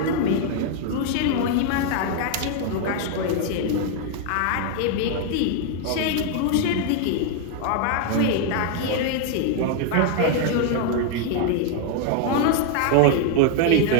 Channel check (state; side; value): different; both; correlation 0.00